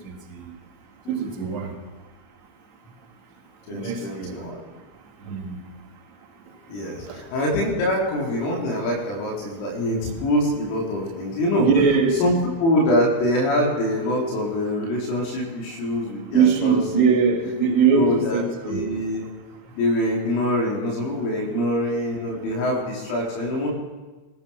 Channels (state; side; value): late; right; 30 ms